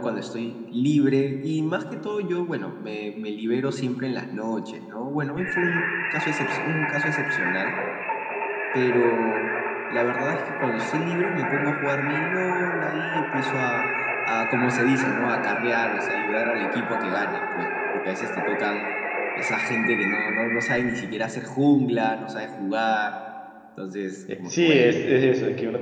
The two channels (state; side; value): identical; both; correlation 1.00